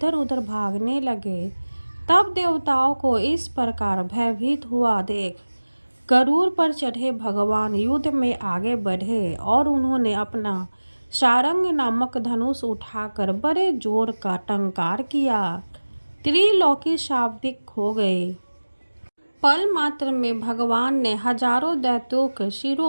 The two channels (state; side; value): inverted; both; correlation -1.00